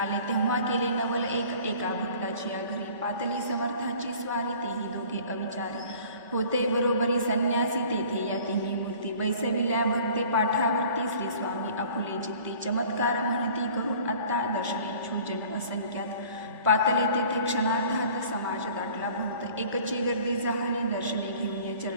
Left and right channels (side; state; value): both; inverted; correlation -0.49